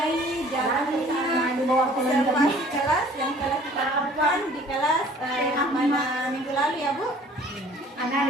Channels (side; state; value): both; normal; correlation 0.52